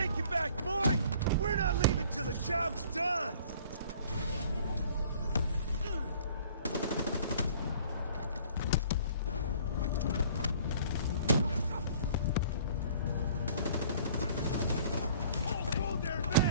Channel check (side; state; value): both; inverted; correlation -0.53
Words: back, boy! We're not leaving till the job's done! Hold there! How